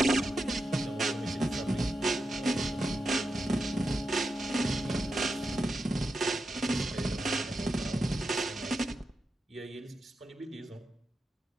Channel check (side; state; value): both; normal; correlation 0.88